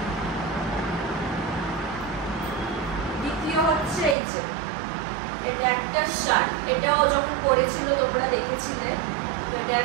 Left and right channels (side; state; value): left; drops out; at 4.2 s